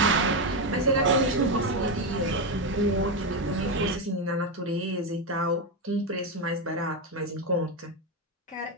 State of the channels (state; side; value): normal; both; correlation 0.08